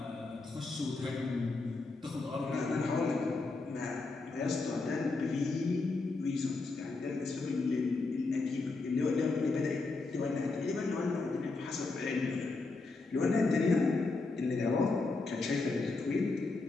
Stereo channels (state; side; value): quieter; right; 3.7 dB